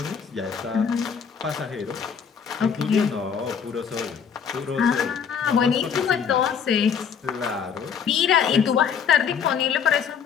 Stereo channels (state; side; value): quieter; right; 7.0 dB